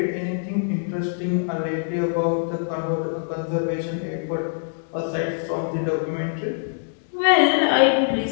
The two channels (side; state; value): right; silent; digital silence